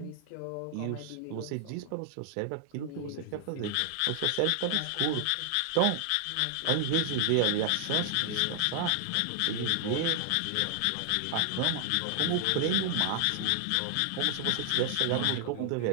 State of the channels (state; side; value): different; both; correlation 0.00